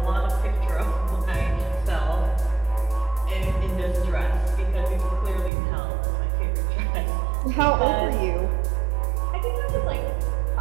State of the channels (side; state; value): left; drops out; at 5.5 s